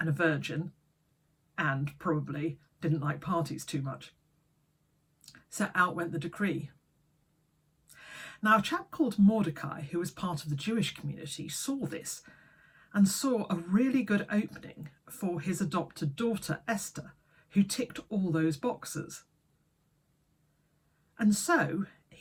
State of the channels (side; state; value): both; identical; correlation 1.00